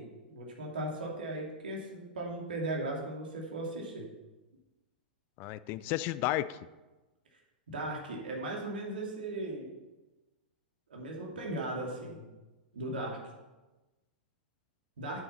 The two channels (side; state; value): both; normal; correlation -0.06